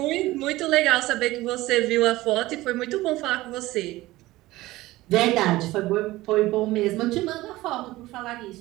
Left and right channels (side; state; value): left; quieter; 18.1 dB